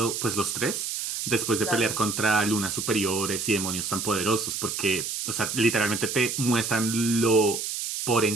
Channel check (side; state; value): right; noise; hiss, 4 dB below the sound